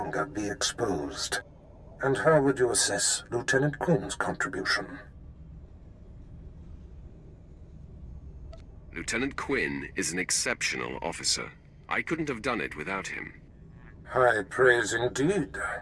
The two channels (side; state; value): both; identical; correlation 1.00